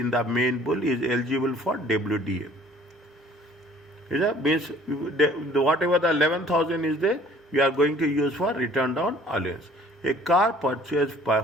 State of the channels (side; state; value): both; normal; correlation 0.54